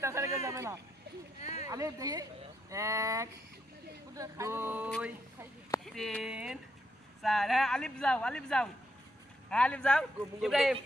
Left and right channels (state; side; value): normal; both; correlation 0.79